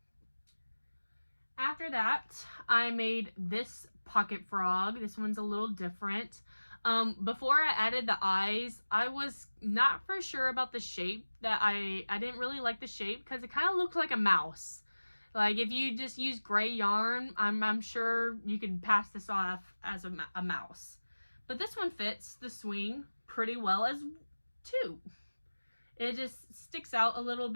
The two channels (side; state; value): both; inverted; correlation -1.00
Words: After that, I made this pocket frog. This one's a little different. Before I added the eyes, I was not for sure about the shape. I didn't really like the shape because it kind of looked like a mouse. Like, if you just use gray yarn, I'm sure you could pass this off as a mouse. But this one fits the swing pretty well as too. It just sticks out a little